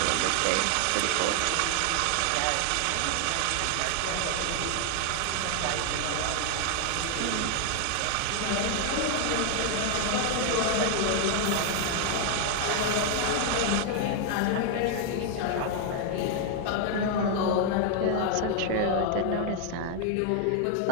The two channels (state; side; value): different; both; correlation 0.00